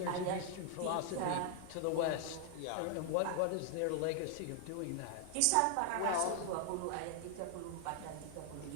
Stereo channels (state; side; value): different; both; correlation 0.00